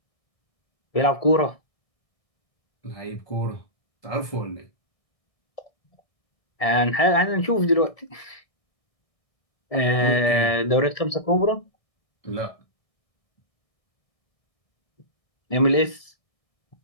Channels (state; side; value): late; right; 1.7 ms